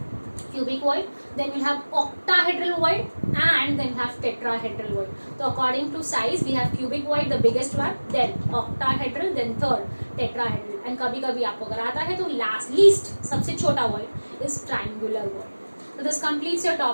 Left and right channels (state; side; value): inverted; both; correlation -1.00